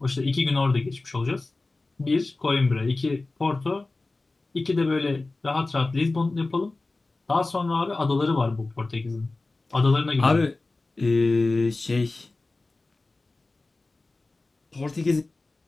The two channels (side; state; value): right; quieter; 3.3 dB